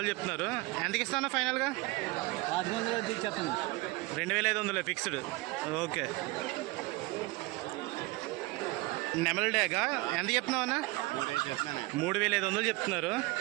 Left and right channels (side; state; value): left; quieter; 22.4 dB